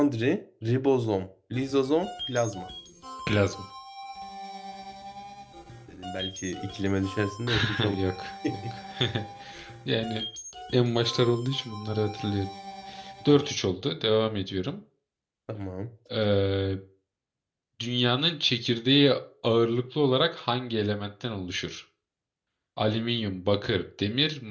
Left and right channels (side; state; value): both; identical; correlation 1.00